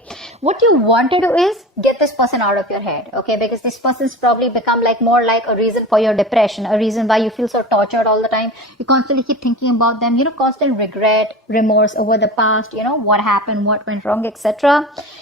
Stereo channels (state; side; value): normal; both; correlation 0.32